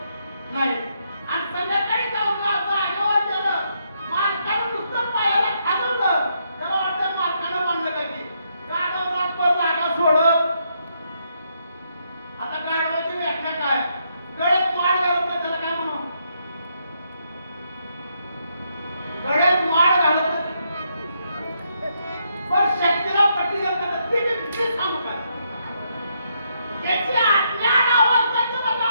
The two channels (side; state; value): both; inverted; correlation -0.77